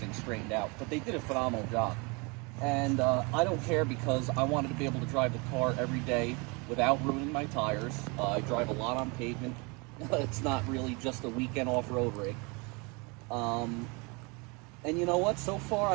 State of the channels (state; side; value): quieter; left; 29.3 dB